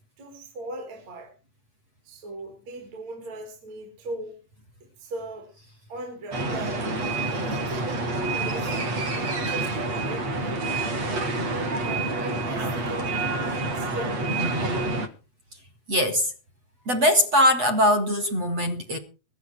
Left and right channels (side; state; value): left; late; 8.1 ms